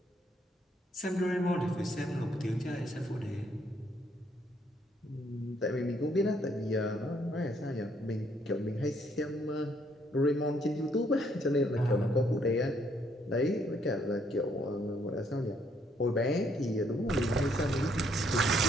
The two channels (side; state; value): both; normal; correlation 0.69